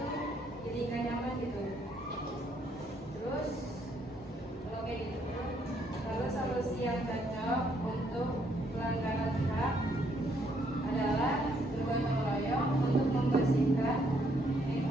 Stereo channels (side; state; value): both; normal; correlation 0.70